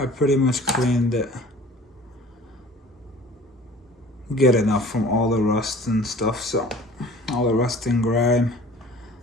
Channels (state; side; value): normal; both; correlation 0.47